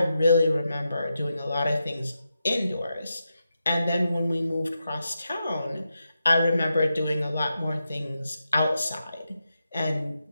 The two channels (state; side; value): inverted; both; correlation -0.87